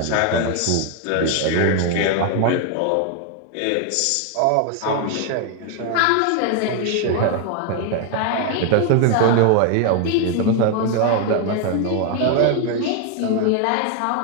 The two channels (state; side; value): different; both; correlation 0.00